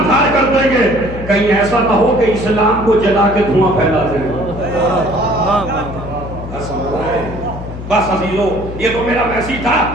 دھار کر دیں گے، کہیں ایسا نہ ہو کہ اسلام کو جلا کے دھواں پھیلا دیں گے. بس عزیزو یہ تو میرا میسیج تھا.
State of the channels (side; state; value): left; noise; hum, 10 dB below the sound